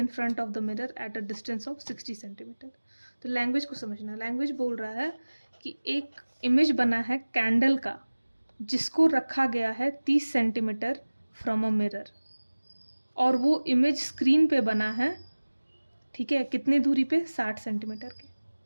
front of the mirror at a distance of 60 centimetre. तो language को समझना, language बोल रहा है कि एक इमेज बना है कैंडल का, जिसको रखा गया है 30 सेंटीमीटर फ्रॉम अ मिरर, और वो इमेज स्क्रीन पे बना है, ठीक है, कितनी दूरी पे, 60 सेंटीमीटर के,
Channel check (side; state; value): both; inverted; correlation -1.00